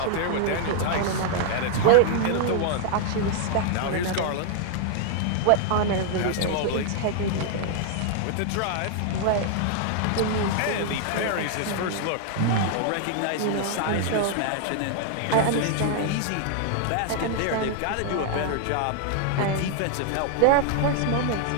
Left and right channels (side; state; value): both; different; correlation 0.00